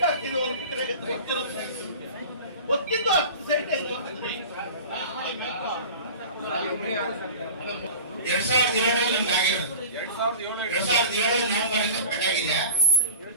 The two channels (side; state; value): both; inverted; correlation -0.37